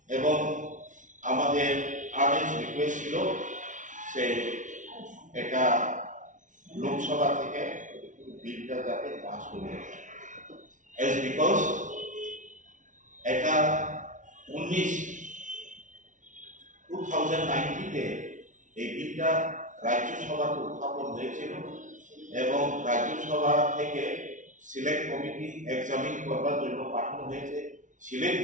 এবং আমাদের আর্নেস্ট রিকোয়েস্ট ছিল সে এটা লোকসভা থেকে বিলটা যাতে পাস করে এজ বিকজ এটা 2019-তে এই বিলটা রাজ্যসভাতে উত্থাপন হয়েছিল এবং রাজ্যসভা থেকে সিলেক্ট কমিটি এক্সামিন করবার জন্য পাঠানো হয়েছে। সিলেক্ট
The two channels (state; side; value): late; left; 0.37 ms